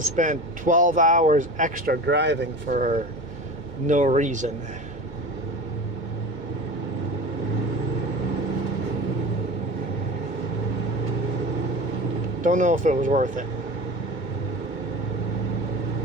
12 hours extra driving for no reason. Don't know if it was worth it.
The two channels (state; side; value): late; right; 2.2 ms